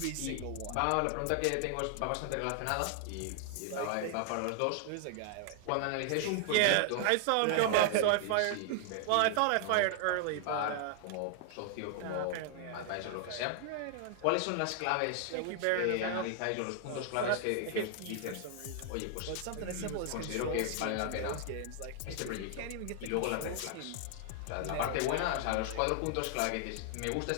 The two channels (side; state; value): both; different; correlation 0.00